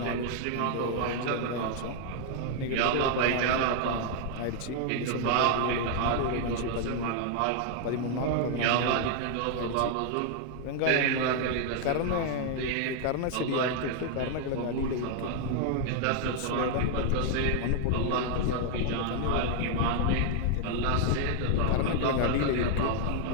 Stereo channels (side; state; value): both; different; correlation 0.00